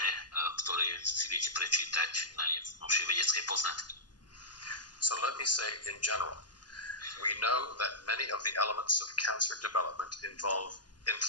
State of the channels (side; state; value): right; late; 0.70 ms